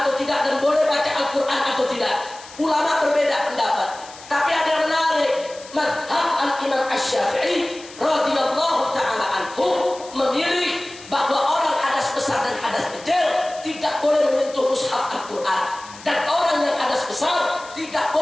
tidak, dan boleh baca Al-Quran atau tidak? Ulama berbeda pendapat. Tapi ada yang menarik, mazhab Al-Imam Asy-Syafi'i radhiyallahu ta'ala anhu memilih bahwa orang hadas besar dan hadas kecil tidak boleh menyentuh mushaf Al-Quran, dan orang yang hadas besar tidak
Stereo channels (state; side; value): noise; left; hiss, 18 dB below the sound